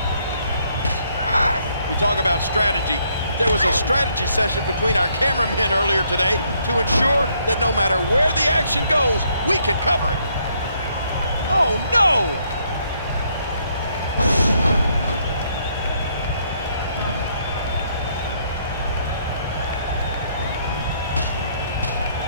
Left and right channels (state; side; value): inverted; both; correlation -0.70